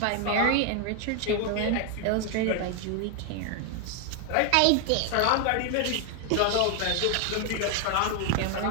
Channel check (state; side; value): different; both; correlation 0.00